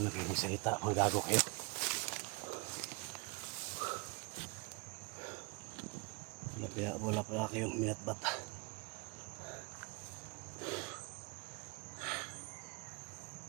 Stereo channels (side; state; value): left; quieter; 30.2 dB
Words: na kayo magsalita, mga gago kayo. Wala pala kayong minatbat.